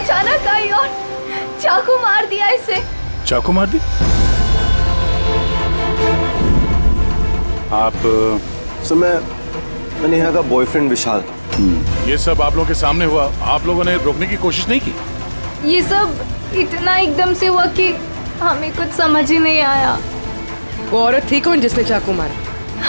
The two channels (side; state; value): both; inverted; correlation -1.00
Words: आई और चाकू मार दिया इसे। चाकू मार दी? आप सर, मैं नेहा का बॉयफ्रेंड विशाल। ये सब आप लोगों के सामने हुआ, आप लोगों ने रोकने की कोशिश नहीं की? ये सब इतना एकदम से हुआ कि हमें कुछ समझ ही नहीं आया। वो औरत थी कौन जिसने चाकू मारा?